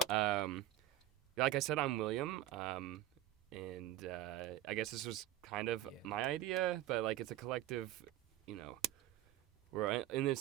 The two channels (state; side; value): quieter; left; 12.4 dB